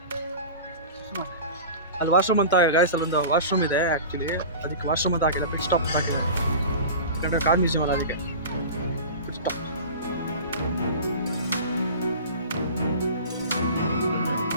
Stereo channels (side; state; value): both; inverted; correlation -0.34